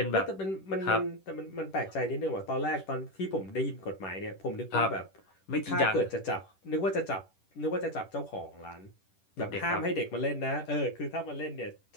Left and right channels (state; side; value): late; right; 10 ms